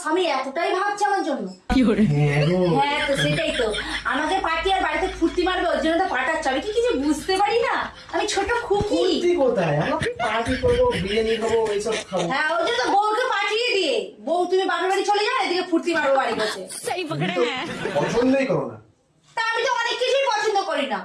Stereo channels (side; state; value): both; identical; correlation 1.00